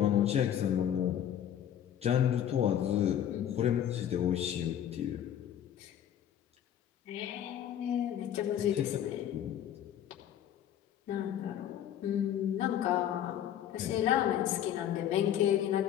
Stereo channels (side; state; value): right; quieter; 10.3 dB